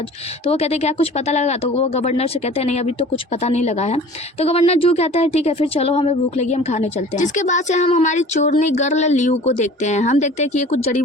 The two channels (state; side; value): normal; both; correlation 0.44